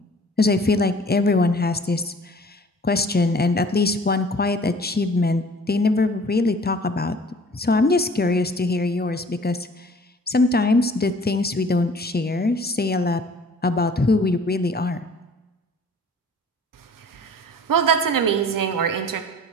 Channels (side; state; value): both; normal; correlation 0.50